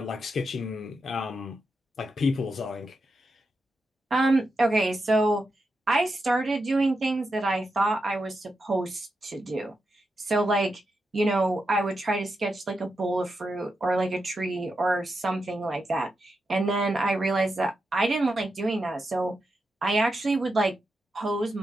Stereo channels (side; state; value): both; normal; correlation 0.87